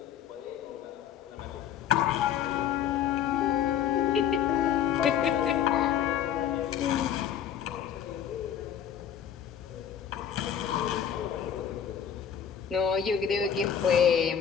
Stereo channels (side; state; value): right; quieter; 8.9 dB